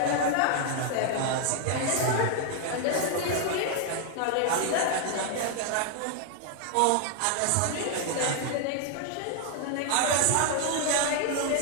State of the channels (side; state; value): both; different; correlation 0.00